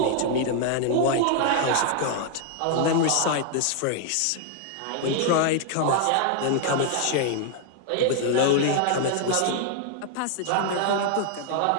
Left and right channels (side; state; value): both; different; correlation 0.00